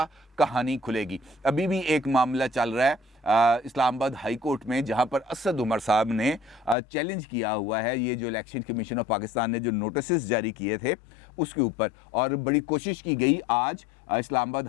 कहानी खुलेगी। अभी भी एक मामला चल रहा है इस्लामाबाद हाई कोर्ट में, जहां पर असद उमर साहब ने चैलेंज किया हुआ है ये जो इलेक्शन कमीशन ऑफ पाकिस्तान ने जो नोटिस जारी किए थे उसके ऊपर। और बड़ी कोशिश की गई आज इस्लामाबाद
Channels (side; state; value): right; drops out; at 6.8 s